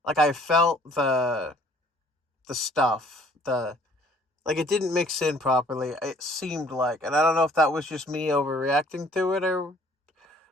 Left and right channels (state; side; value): normal; both; correlation 0.58